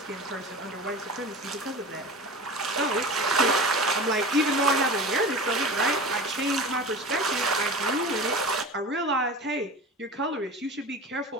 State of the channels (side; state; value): both; normal; correlation 0.33